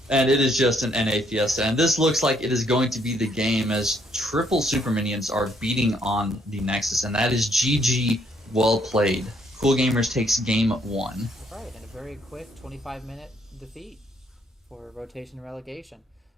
And it is just an NA Fiesta. And this looks like it is going to be the game as triple super minions are beating on the Nexus. And that is GG, well played. Cool Gamers takes game 1. Right, and a very quick 25-minute defeat for rotation and relegation.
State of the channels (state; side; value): normal; both; correlation 0.69